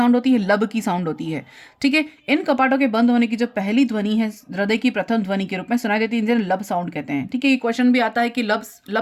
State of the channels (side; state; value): both; identical; correlation 1.00